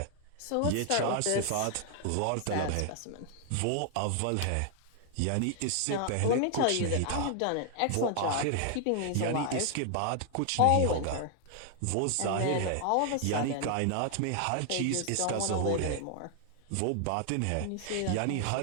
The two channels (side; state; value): both; different; correlation 0.00